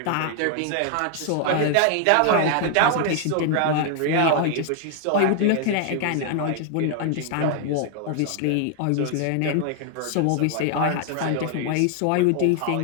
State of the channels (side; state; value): both; different; correlation 0.00